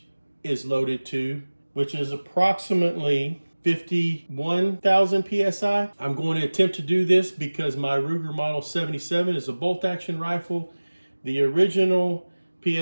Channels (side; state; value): both; inverted; correlation -1.00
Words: is loaded to, which is approximately 51,000 PSI. I'm going to attempt to do this because my Ruger Model 77 is a bolt action rifle. The original